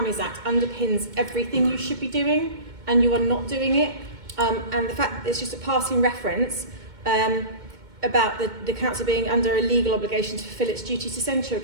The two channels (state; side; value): late; left; 2.2 ms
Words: Act underpins everything you should be doing, and you are not doing it. And the fact that it's just a passing reference about the council being under a legal obligation to fulfill its duty to send